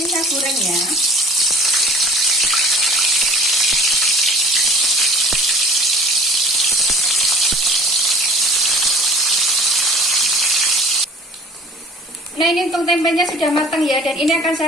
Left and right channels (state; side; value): normal; both; correlation 0.47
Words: saya goreng ya. Nah, ini untuk tempenya sudah matang ya, dan ini akan